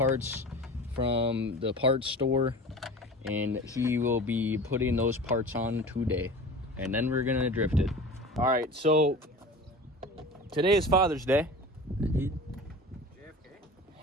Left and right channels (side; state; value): both; normal; correlation 0.37